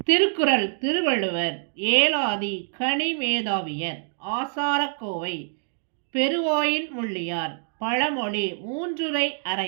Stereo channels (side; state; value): left; silent; 61 dB below the other